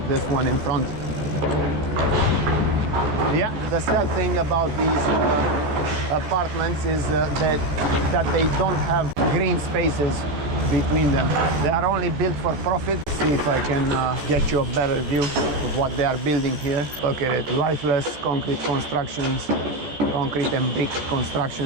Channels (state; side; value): late; left; 14 ms